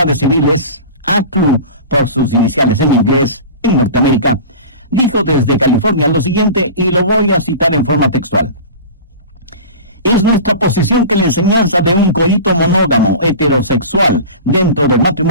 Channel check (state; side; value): inverted; both; correlation -0.35